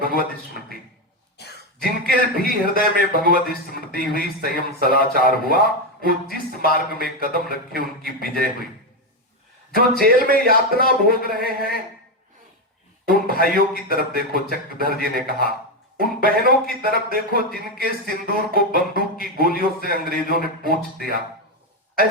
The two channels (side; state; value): both; normal; correlation 0.09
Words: भगवत स्मृति। जिनके भी हृदय में भगवत स्मृति हुई, संयम सदाचार हुआ, वो जिस मार्ग में कदम रखे उनकी विजय हुई। जो जेल में यातना भोग रहे हैं उन भाइयों की तरफ देखो, चक्रधर जी ने कहा। उन बहनों की तरफ देखो जिनके सिंदूर को बंदूक की गोलियों से अंग्रेजों ने पोंछ दिया।